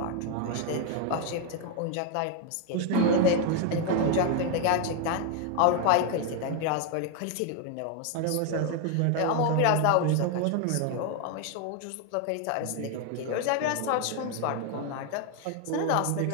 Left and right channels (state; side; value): different; both; correlation 0.01